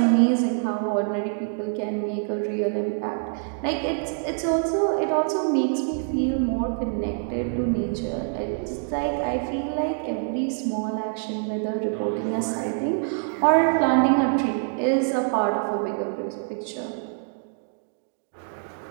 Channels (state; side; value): silent; left; 61 dB below the other